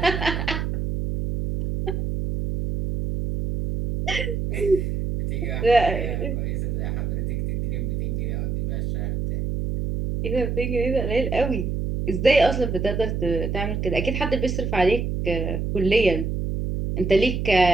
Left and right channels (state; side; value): noise; right; hum, 2 dB below the sound